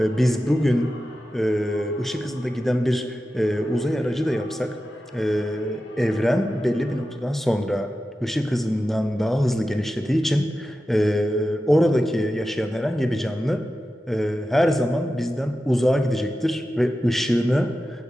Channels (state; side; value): normal; both; correlation 0.92